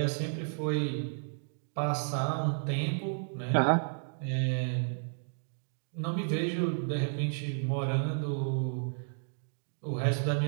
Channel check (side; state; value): left; silent; digital silence